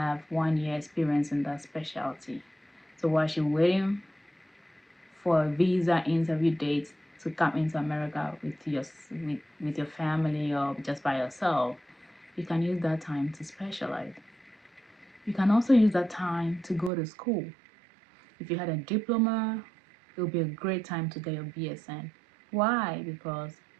1 year experience in that specialty. So while you're waiting for a visa interview date to come into America with your family or just by yourself, you can use that time to specialize. You can also use that time to go to school. If you had a diploma, it would be a great time to get your BSN. Why? Because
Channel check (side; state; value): left; drops out; at 16.9 s